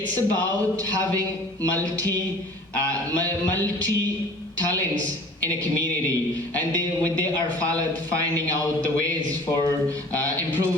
about having multi talents in a community, and they are finding out the ways for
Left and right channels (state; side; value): normal; both; correlation 0.46